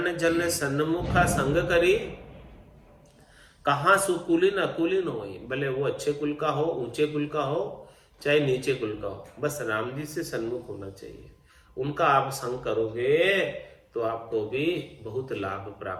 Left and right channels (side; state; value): both; identical; correlation 1.00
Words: जन सन्मुखा संग करी, कहाँ सुकुलीन अकुलीन हो। भले वो अच्छे कुल का हो, ऊंचे कुल का हो, चाहे नीचे कुल का हो, बस राम जी से सन्मुख होना चाहिए। उनका आप संग करोगे तो आपको भी बहुत लाभ